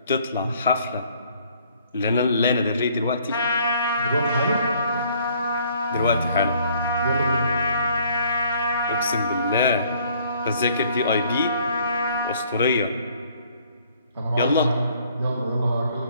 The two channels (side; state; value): both; inverted; correlation -0.61